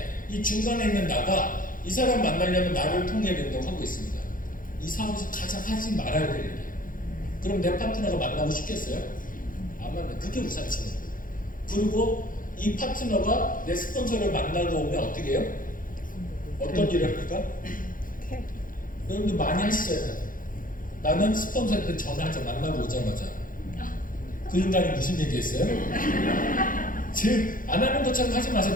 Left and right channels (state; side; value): late; right; 0.40 ms